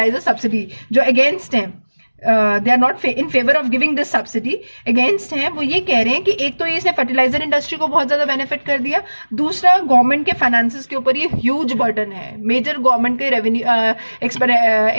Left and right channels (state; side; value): inverted; both; correlation -1.00